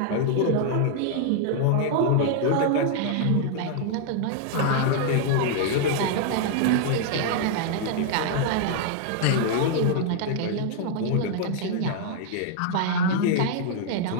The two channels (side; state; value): both; different; correlation 0.00